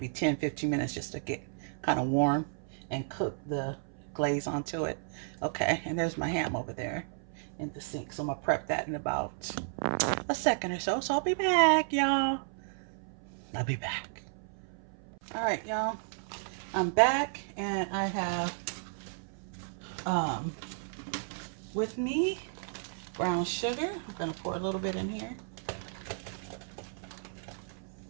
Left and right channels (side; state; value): left; silent; 56 dB below the other